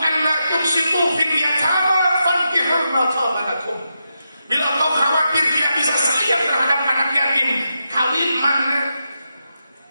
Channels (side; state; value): both; inverted; correlation -0.86